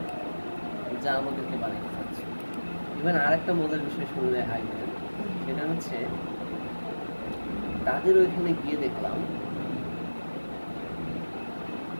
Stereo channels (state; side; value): inverted; both; correlation -1.00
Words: যা আমাদেরকে বানাতে চাচ্ছে। ইভেন আরেকটা মজার বিষয় শুনলে হাসবেন, সেটা হচ্ছে তাদের ওইখানে গিয়ে দেখলাম